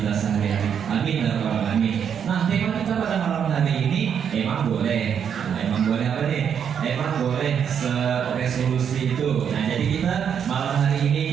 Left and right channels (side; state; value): left; quieter; 7.9 dB